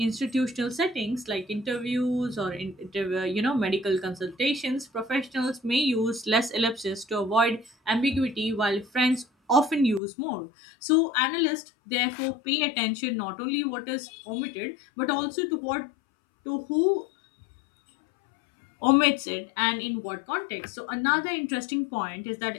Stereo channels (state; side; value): drops out; right; at 10.0 s